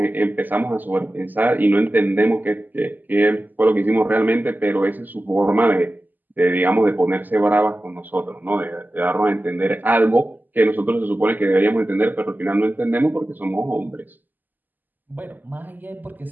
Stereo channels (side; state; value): left; late; 0.086 ms